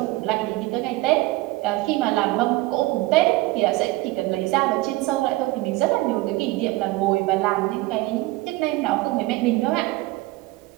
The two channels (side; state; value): left; quieter; 19.9 dB